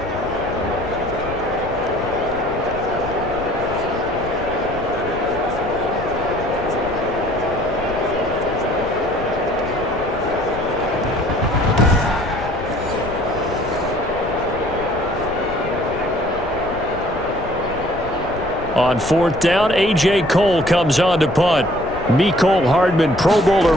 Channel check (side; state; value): left; noise; rumble, 13 dB below the sound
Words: On fourth down, A.J. Cole comes on to punt. Mecole Hardman, Pro Bowler